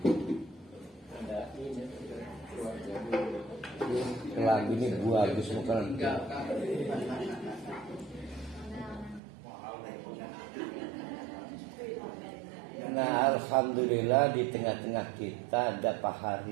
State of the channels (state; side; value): drops out; left; at 9.2 s